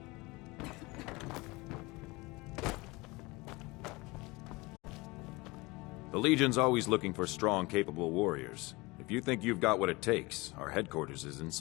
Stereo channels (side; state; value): right; quieter; 23.5 dB